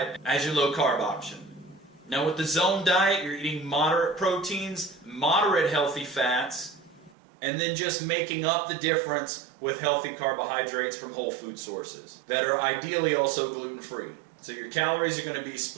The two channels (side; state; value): left; drops out; at 7.2 s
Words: as your low carb option. Now with the zone diet, you're eating moderate proteins, moderate healthy fats, and then just making up the difference with healthy carbohydrates from whole food sources that are ideally also gluten-free. So your calories are going to be